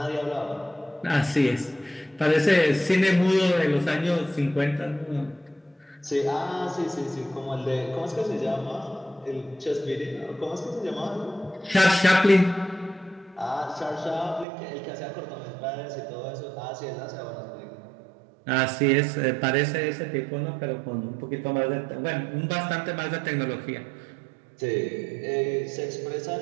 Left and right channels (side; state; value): left; drops out; at 14.5 s